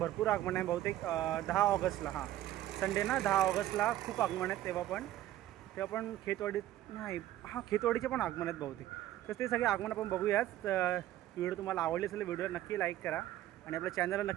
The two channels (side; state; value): left; quieter; 13.8 dB